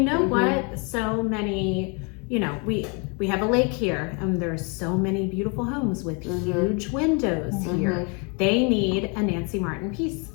know Mhm. what? So many, we have a lake here, and there's so many beautiful homes with huge windows here. They need a Nancy Martin piece.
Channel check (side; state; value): right; quieter; 34.0 dB